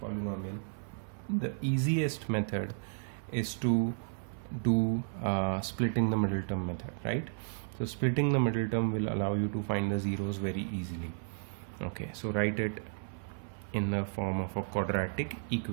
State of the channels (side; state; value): left; silent; 56 dB below the other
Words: polynomial, the easiest method is to do splitting the middle term method, right? So splitting the middle term will allow you to find the zeros very easily. Okay, so write it in the form of a quadratic